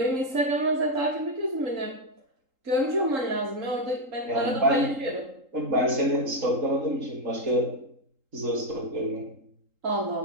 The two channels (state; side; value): late; left; 3.8 ms